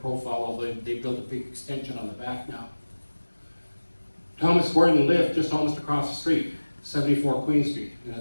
although they built a big extension on the back now. Thomas Gordon lived just almost across the street, 74 Queen Street, and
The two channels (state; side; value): inverted; both; correlation -1.00